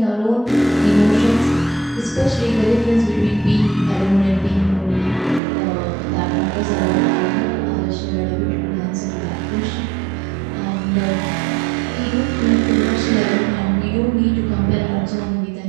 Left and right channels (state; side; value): drops out; left; at 5.4 s